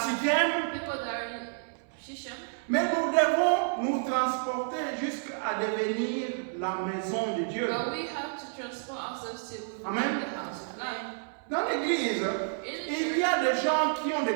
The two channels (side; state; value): left; silent; 58 dB below the other